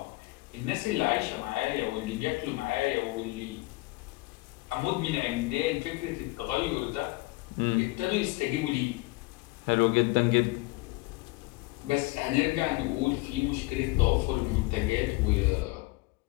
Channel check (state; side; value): quieter; right; 22.7 dB